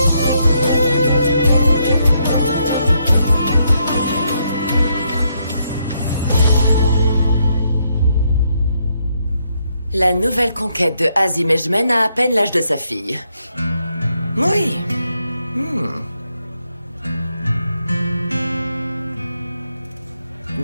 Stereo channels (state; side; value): inverted; both; correlation -0.77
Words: La nouvelle conquête de Azim Ejmen a à peine l'âge de sa fille. Oui.